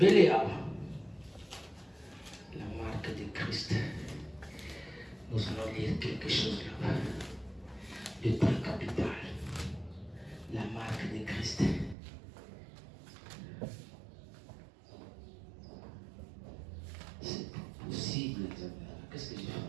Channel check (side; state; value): left; drops out; at 12.0 s